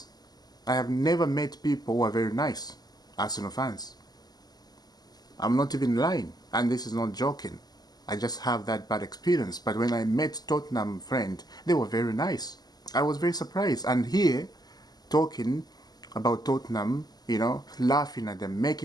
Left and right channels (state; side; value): late; right; 0.20 ms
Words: I have never met people who are very nice, Arsenal fans. I'm not even lying. And this is not joking. I just have that bad experience. But when I met Tottenham friend, they were very nice. I was very surprised. And here, talking about Tottenham, you know, laughing at them,